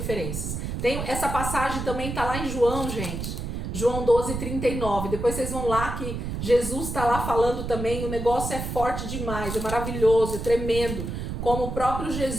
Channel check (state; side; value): noise; right; rumble, 5 dB below the sound